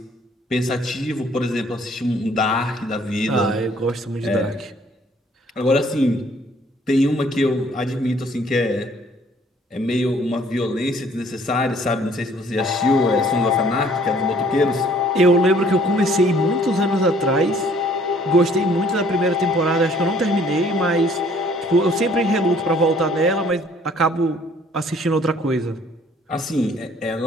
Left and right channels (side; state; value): both; normal; correlation 0.58